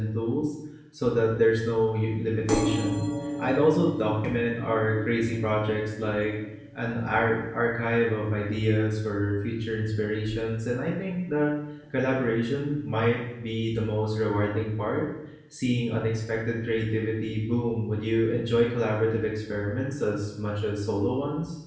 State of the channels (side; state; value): both; identical; correlation 1.00